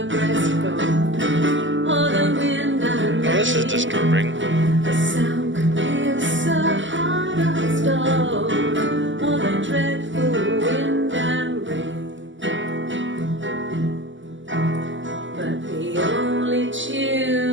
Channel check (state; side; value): late; left; 0.55 ms